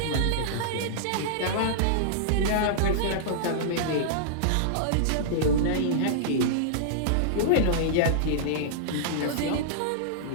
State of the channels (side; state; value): both; different; correlation -0.02